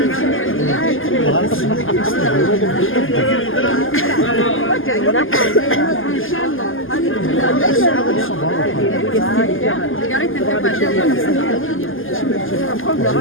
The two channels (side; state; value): right; late; 0.59 ms